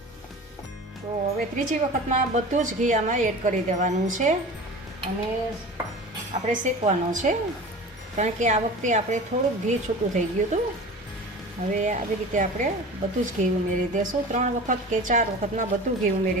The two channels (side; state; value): both; normal; correlation 0.36